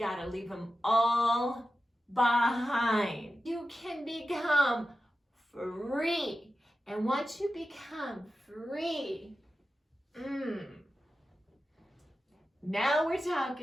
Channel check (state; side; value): normal; both; correlation 0.93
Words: leave them all behind. You can become free. And once you become free, now we're